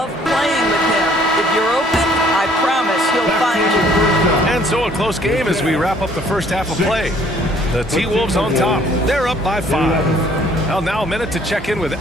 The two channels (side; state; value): both; normal; correlation 0.59